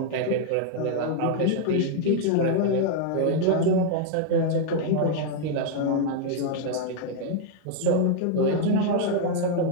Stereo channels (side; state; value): both; different; correlation 0.00